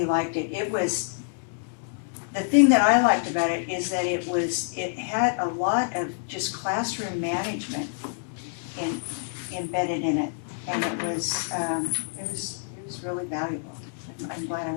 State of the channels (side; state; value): right; silent; digital silence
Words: liked it. The thing that I liked about it is that it had a lot of just classroom management embedded in it. And it was really valuable. I'm glad I